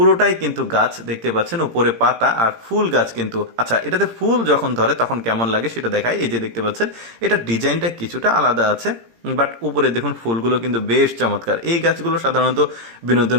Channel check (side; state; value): left; late; 17 ms